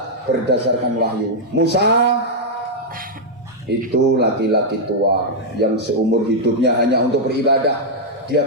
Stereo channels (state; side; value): normal; both; correlation -0.04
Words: berdasarkan wahyu. Musa itu laki-laki tua yang seumur hidupnya hanya untuk beribadah.